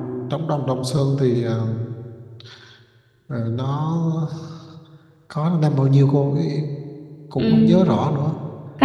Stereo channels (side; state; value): both; identical; correlation 1.00